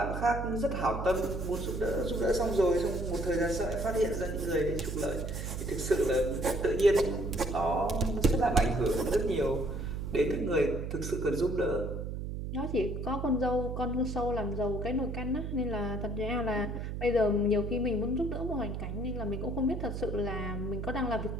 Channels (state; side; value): noise; right; hum, 5 dB below the sound